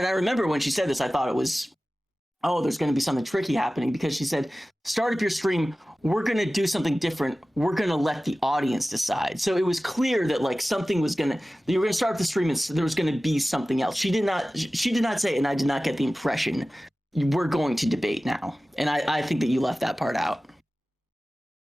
I remember when she said this, I thought it was, oh, there's going to be something tricky happening, because she said, start up your stream, we're going to do something different. We're going to let the audience decide. So it was clear that like something was you were going to start the stream and there was going to be something else. She did not say, and I did not get the impression, we're going to debate now. And I think that you left that part out.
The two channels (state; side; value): normal; both; correlation 0.96